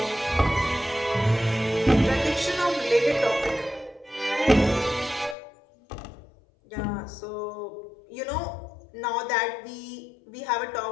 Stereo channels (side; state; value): right; drops out; at 5.4 s